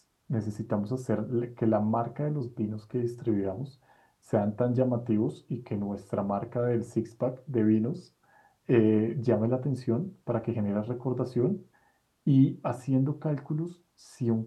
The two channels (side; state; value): both; identical; correlation 1.00